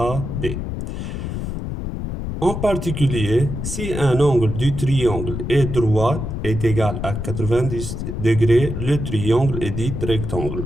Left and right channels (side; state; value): left; noise; rumble, 5 dB below the sound